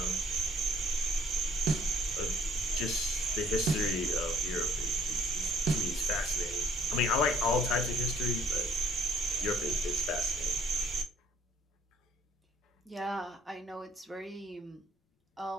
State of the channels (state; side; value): normal; both; correlation 0.60